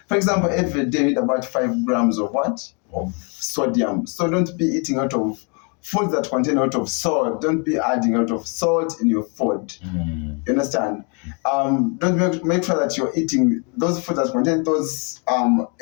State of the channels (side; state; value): right; quieter; 36.0 dB